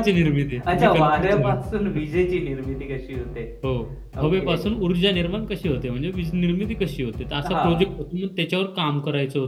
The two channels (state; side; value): identical; both; correlation 1.00